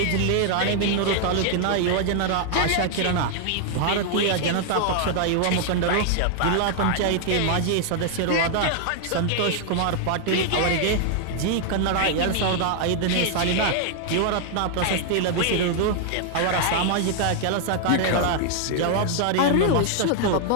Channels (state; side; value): different; both; correlation 0.00